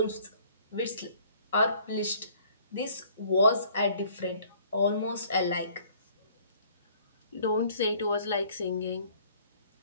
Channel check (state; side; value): inverted; both; correlation -0.57